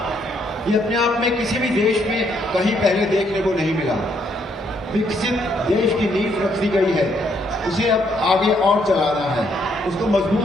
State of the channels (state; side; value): normal; both; correlation 0.72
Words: ये अपने आप में किसी भी देश में कहीं पहले देखने को नहीं मिला। विकसित देश की नींव रख दी गई है, उसे अब आगे और चलाना है, उसको